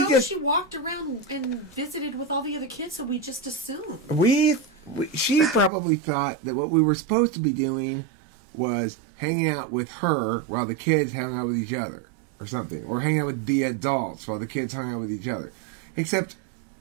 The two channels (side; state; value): left; drops out; at 5.7 s